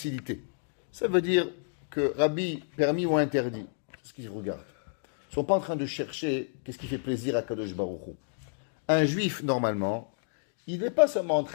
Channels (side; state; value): right; silent; digital silence